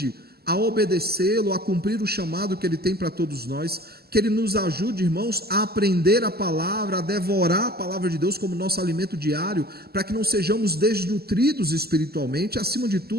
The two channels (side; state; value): left; late; 0.46 ms